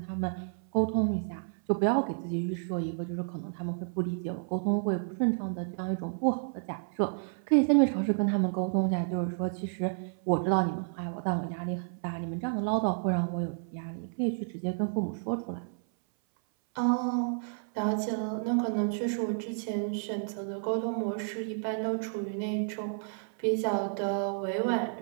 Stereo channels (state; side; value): silent; left; 57 dB below the other